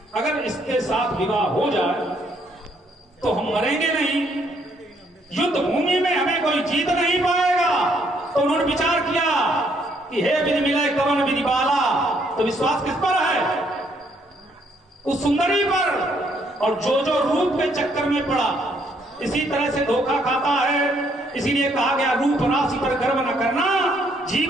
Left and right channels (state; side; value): normal; both; correlation 0.69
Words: अगर इसके साथ विवाह हो जाए तो हम मरेंगे नहीं, युद्ध भूमि में हमें कोई जीत नहीं पाएगा। तो उन्होंने विचार किया कि हे विधि मिले कवन विधि बाला। तो विश्वास किस पर है? उस सुंदरी पर। और जो जो रूप के चक्कर में पड़ा, इसी तरह से धोखा खाता है। इसीलिए कहा गया रूप राशि पर गर्व न करना,